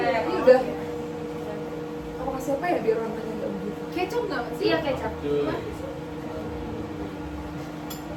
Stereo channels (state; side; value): identical; both; correlation 1.00